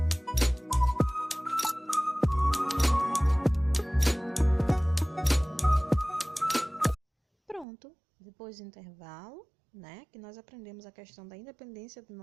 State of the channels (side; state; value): left; drops out; at 7.7 s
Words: Pronto, depois do intervalo, né, que nós aprendemos a questão da independência do